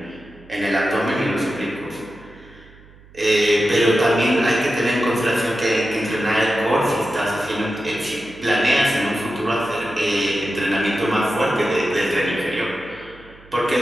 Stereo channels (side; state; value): right; noise; hum, 24 dB below the sound